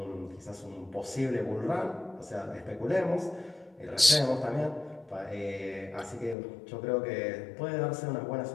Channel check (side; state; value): right; drops out; at 6.4 s